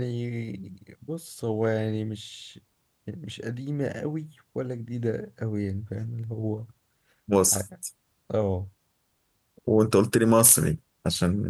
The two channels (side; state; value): both; identical; correlation 1.00